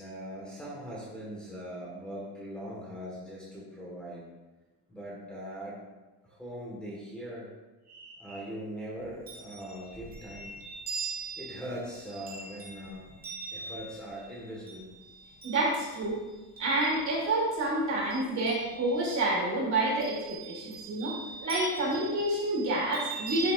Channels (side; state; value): both; normal; correlation 0.05